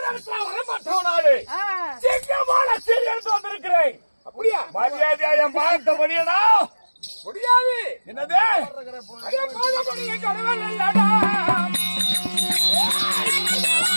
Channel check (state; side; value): inverted; both; correlation -1.00